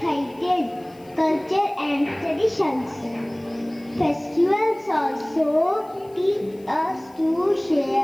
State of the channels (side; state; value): left; noise; hiss, 29 dB below the sound